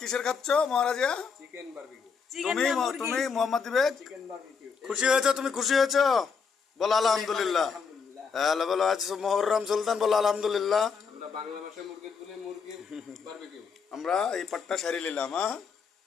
কিসের খাচ্ছ মহারাজা? চিকেন বারবিকিউ তুমি তুমি মোহাম্মদ ইবেদ চিকেন বারবিকিউ খুশি হয়েছো? তুমি খুশি হয়েছো? বলো আলহামদুলিল্লাহ। আলহামদুলিল্লাহ। হ্যালো বলো আজ মুহররম সুলতান, বলো আলহামদুলিল্লাহ। আমরা বাংলা ভাষায় মুরগি বলে মুরগির বারবিকিউ। আমরা এই পাট্টা সারি নিলাম। হ্যাঁ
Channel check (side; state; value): right; quieter; 5.7 dB